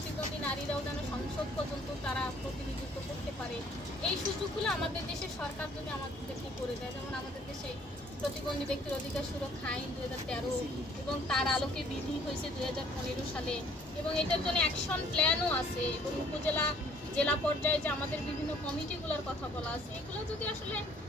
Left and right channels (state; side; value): normal; both; correlation 0.59